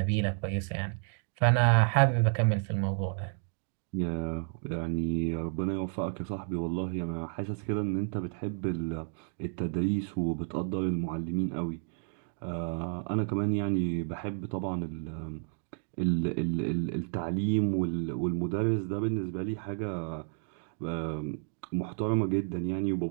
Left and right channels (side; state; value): left; silent; 57 dB below the other